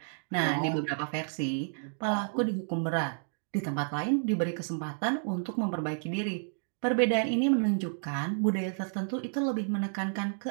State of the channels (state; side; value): silent; left; digital silence